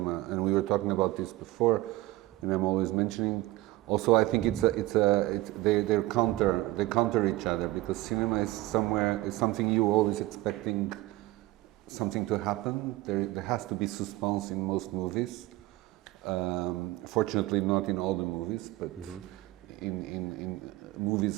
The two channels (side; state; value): left; quieter; 18.3 dB